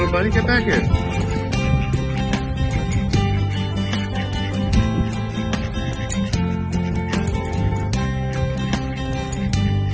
buddy. Get back here.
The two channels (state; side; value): identical; both; correlation 1.00